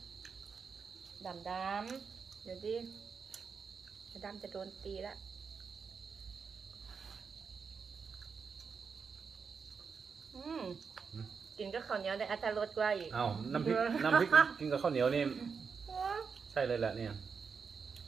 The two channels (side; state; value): left; quieter; 5.7 dB